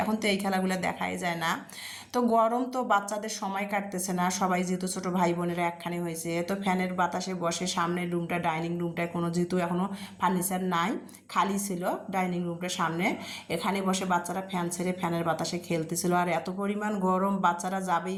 এখন তো এই খেলাগুলো দেখাই যায় না। তো গরম তো বাচ্চাদের সময় কাটতেছে না, সবাই যেহেতু ছোটো ভাই বোনেরা একখানে হয়েছে, তো ফ্যানের বাতাসে বসে সামনের রুমটা ডাইনিং রুমটায় কোনো যেহেতু এখনও ফার্নিচার নাই, খালি ছিল ডাইনিং রুমটার সামনে, এখানে বসে বাচ্চারা ফ্যান ছেড়ে ফ্যানের বাতাসে খেলতেছিল। আর এত পরিমাণ গরম, বাচ্চারা যাবেই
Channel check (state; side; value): identical; both; correlation 1.00